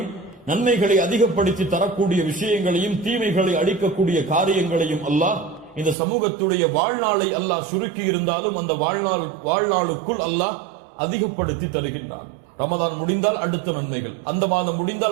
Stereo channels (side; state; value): left; drops out; at 6.0 s